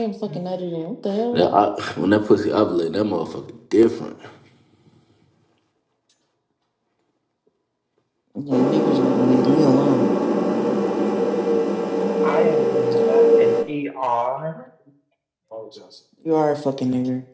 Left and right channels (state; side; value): identical; both; correlation 1.00